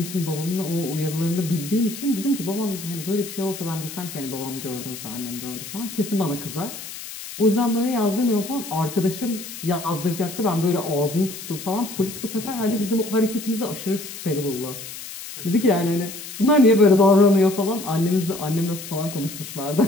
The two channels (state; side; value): noise; left; hiss, 11 dB below the sound